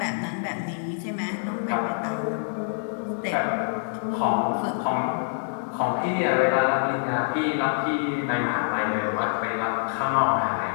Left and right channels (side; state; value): right; silent; digital silence